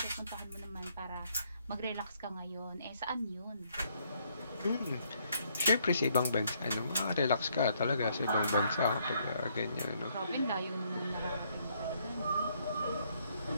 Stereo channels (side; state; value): both; inverted; correlation -0.70